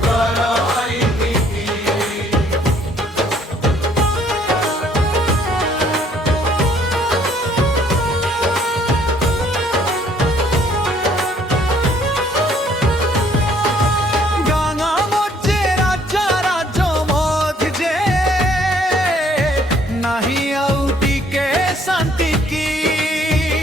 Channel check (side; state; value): both; normal; correlation 0.62